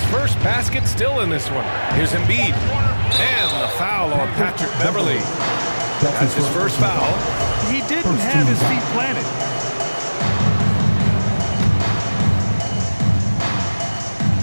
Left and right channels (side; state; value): both; inverted; correlation -1.00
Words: first basket still in this one. Here's Embiid. And the foul on Patrick Beverly. That's his first foul. He didn't have his feet planted.